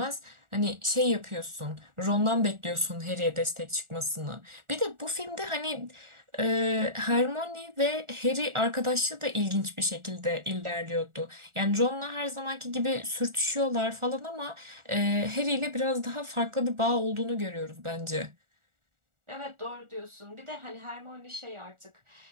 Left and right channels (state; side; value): late; left; 1.4 ms